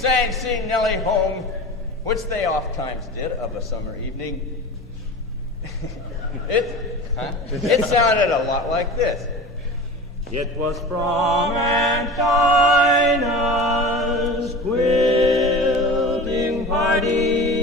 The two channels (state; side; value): normal; both; correlation 0.34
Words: Sing Nellie Home, which they oft-times did of a summer evening, it sounded a lot like this. It was from Aunt Dinah's quilting